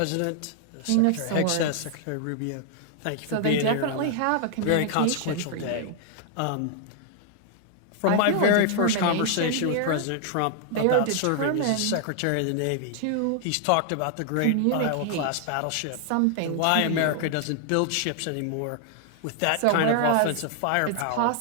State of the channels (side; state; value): both; different; correlation 0.00